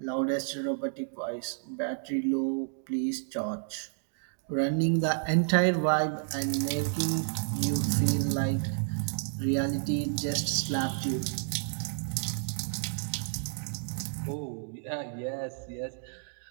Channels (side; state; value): left; silent; digital silence